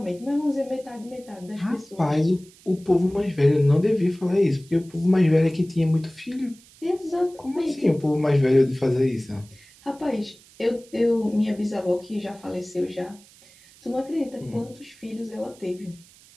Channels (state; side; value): noise; right; hiss, 25 dB below the sound